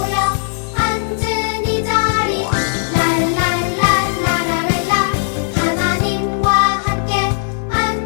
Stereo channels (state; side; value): silent; right; 56 dB below the other